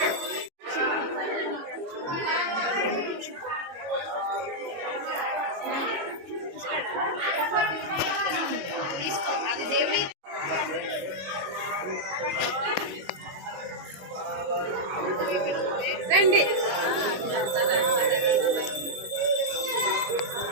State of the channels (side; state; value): left; late; 22 ms